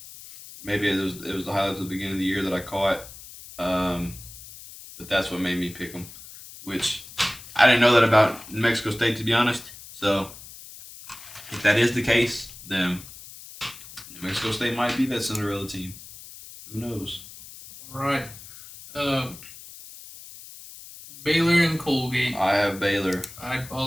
Maybe it was the highlights at the beginning of the year that I caught, but that's what made me pick them. Which I didn't know that about New Mexico State, to be honest. So if that is the case, then New Mexico State might be that Cinderella team. Who knows? Right. Baylor and Colgate. I have Baylor. I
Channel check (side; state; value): left; noise; hiss, 16 dB below the sound